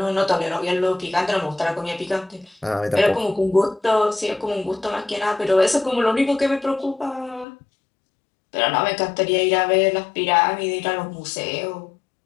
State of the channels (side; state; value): right; drops out; at 7.5 s